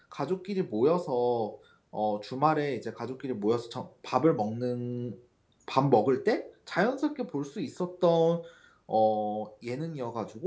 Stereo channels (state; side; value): identical; both; correlation 1.00